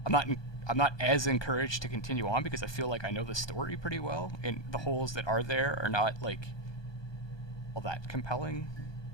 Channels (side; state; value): right; late; 1.2 ms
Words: I'm not as encouraged to continue on because I feel like I know the story pretty well, and the holes that are there are not like all that compelling.